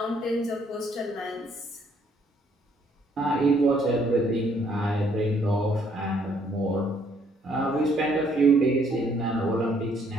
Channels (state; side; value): normal; both; correlation 0.66